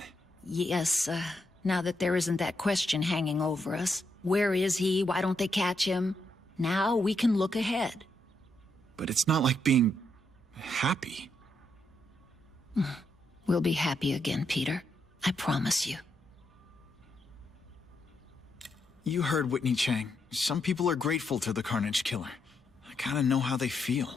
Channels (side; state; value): both; normal; correlation 0.79